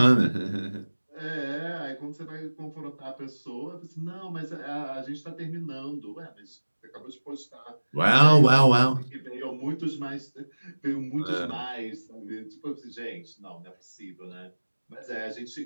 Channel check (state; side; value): inverted; both; correlation -1.00